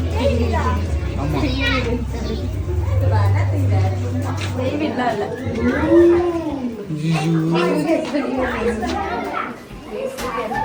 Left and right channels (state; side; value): identical; both; correlation 1.00